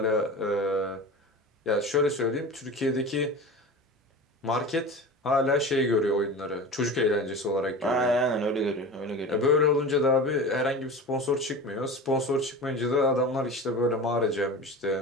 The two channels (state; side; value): normal; both; correlation 0.32